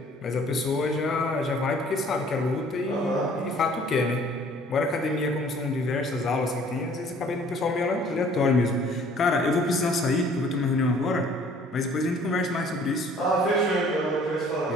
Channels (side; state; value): both; normal; correlation 0.55